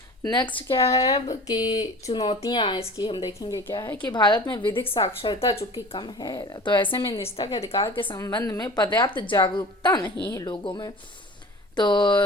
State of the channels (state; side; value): normal; both; correlation 0.40